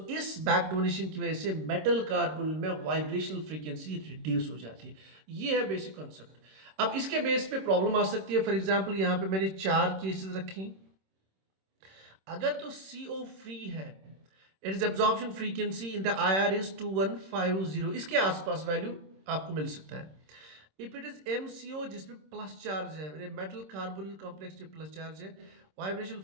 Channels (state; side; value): late; left; 26 ms